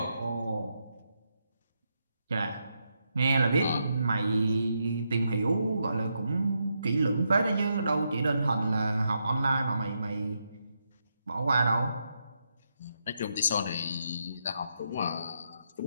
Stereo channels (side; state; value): both; inverted; correlation -0.82